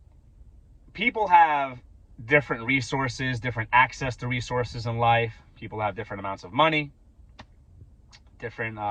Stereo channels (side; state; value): both; identical; correlation 1.00